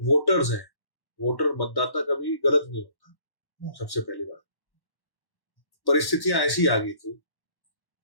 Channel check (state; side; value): late; right; 1.1 ms